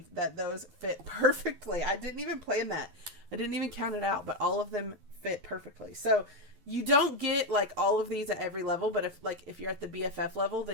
that those fit perfectly. I didn't even plan that. I didn't even count it out, but all of them fit perfectly. So you don't get like all of these at every level, but if you're at the BFF level,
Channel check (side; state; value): left; late; 11 ms